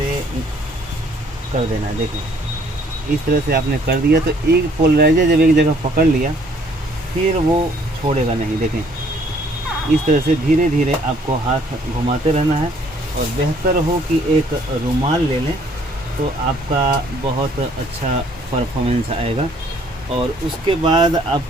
कर देना है। देखें, इस तरह से आपने कर दिया तो एक पोलराइजर जब एक जगह पकड़ लिया फिर वो छोड़ेगा नहीं। देखें, इस तरह से धीरे धीरे आपको हाथ घुमाते रहना है। और बेहतर हो कि एक रुमाल ले लें तो आपका बहुत अच्छा परफॉर्मेंस आएगा। और उसके बाद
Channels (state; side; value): normal; both; correlation 0.61